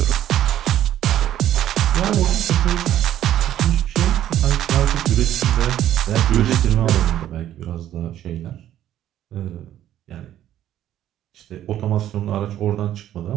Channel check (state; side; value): quieter; left; 12.0 dB